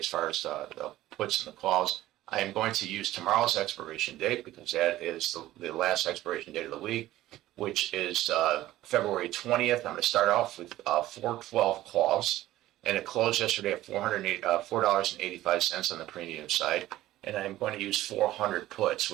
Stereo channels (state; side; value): quieter; left; 15.2 dB